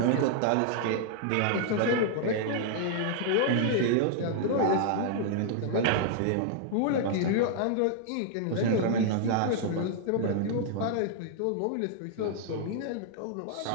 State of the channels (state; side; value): different; both; correlation -0.01